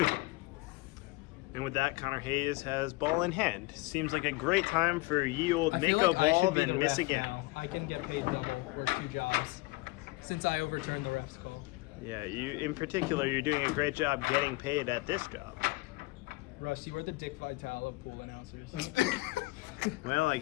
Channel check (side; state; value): right; quieter; 22.5 dB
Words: And with that, Connor Hayes has ball in hand. Seems like a great time for ye old I make feel a like I ball, should be then the miss ref again. now. I can get paid double, work 2 jobs, since I overturned the ref's call. Yeah, you in particular, you're doing a great job getting paid at this job. Russ, you were the Dick Vitale of pool announcers. Well, I